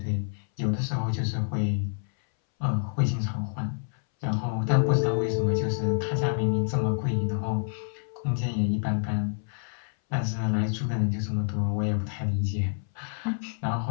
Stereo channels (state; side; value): silent; right; 60 dB below the other